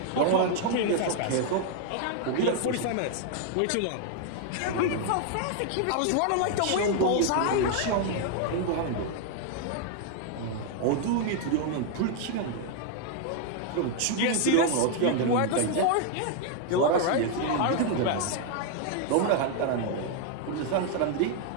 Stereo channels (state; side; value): different; both; correlation 0.00